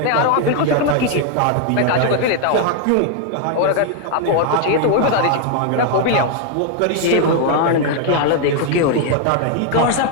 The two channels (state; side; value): different; both; correlation 0.00